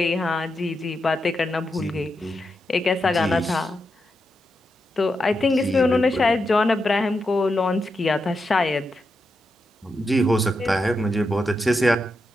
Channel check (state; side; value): normal; both; correlation 0.86